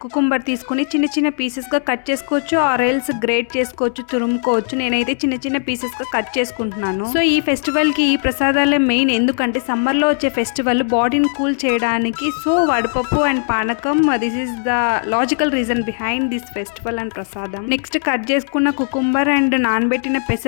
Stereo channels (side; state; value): right; silent; digital silence